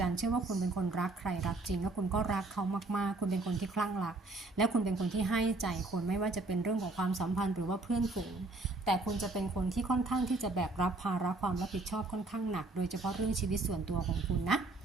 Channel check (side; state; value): left; quieter; 3.1 dB